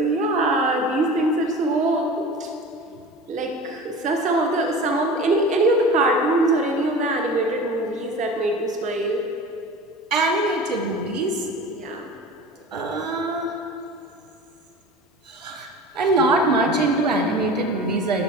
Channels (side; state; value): both; normal; correlation 0.36